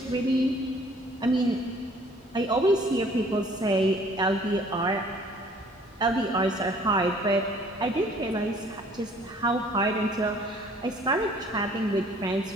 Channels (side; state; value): both; normal; correlation 0.56